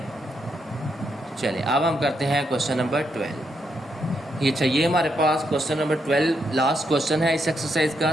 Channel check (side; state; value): both; normal; correlation 0.79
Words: चलिए अब हम करते हैं क्वेश्चन नंबर 12। ये चाहिए हमारे पास क्वेश्चन नंबर 12, लास्ट क्वेश्चन है इस एक्सरसाइज का।